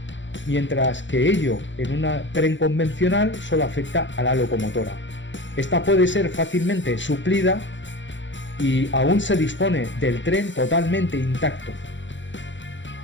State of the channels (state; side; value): late; right; 0.54 ms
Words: mientras que ello en un tren convencional solo afecta a la locomotora. Esta puede ser fácilmente suplida y aún se dispone del tren totalmente intacto.